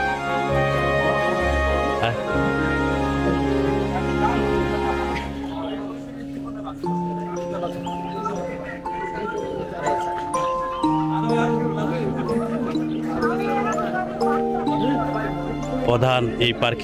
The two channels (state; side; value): identical; both; correlation 1.00